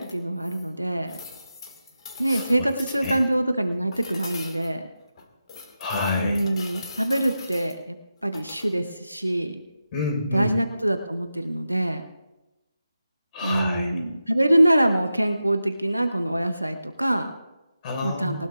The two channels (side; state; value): both; inverted; correlation -0.90